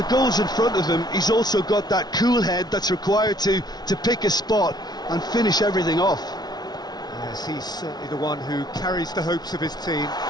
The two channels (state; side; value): late; right; 0.19 ms